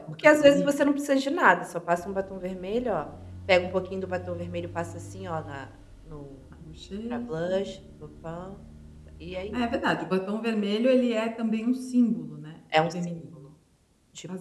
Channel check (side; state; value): both; identical; correlation 1.00